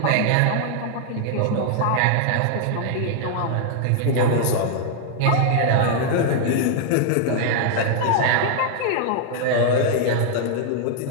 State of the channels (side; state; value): both; different; correlation 0.00